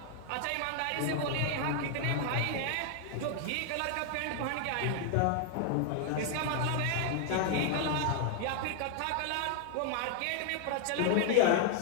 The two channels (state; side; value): different; both; correlation 0.00